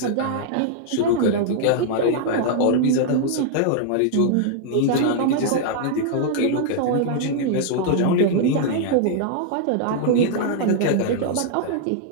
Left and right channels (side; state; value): both; different; correlation -0.01